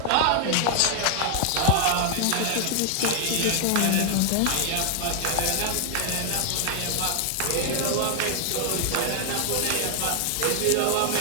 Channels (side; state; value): both; different; correlation 0.00